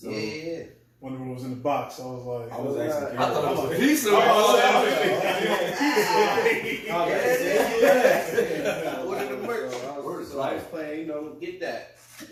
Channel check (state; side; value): identical; both; correlation 1.00